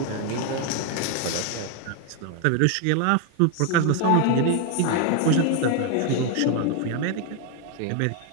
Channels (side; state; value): both; different; correlation 0.01